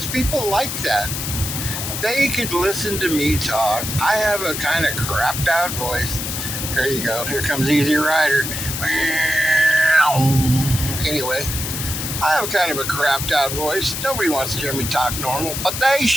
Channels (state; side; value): noise; left; hiss, 4 dB below the sound